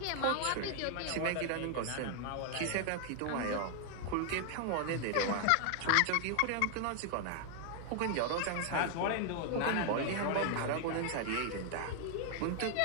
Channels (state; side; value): different; both; correlation 0.00